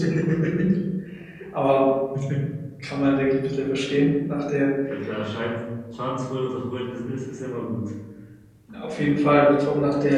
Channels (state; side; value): identical; both; correlation 1.00